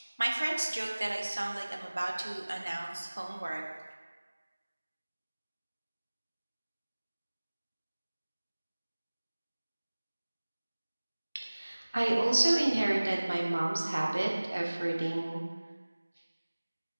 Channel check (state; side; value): inverted; both; correlation -1.00